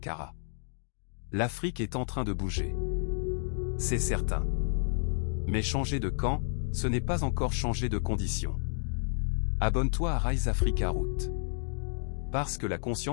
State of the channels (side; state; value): right; silent; digital silence